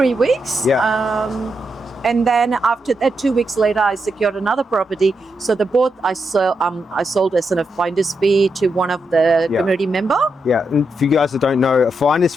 weeks. Yeah. And then after that, 2 weeks later, I secured another property. So the both I sold as a finder's fee to one of the community member. Yeah, and for you guys that don't know, a finder's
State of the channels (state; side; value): normal; both; correlation 0.84